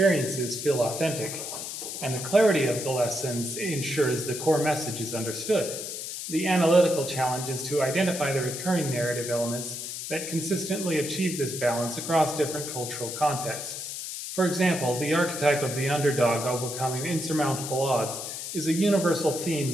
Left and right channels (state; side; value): noise; left; hiss, 6 dB below the sound